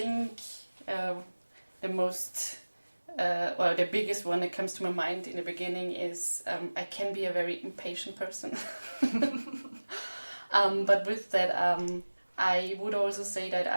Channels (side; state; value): both; inverted; correlation -1.00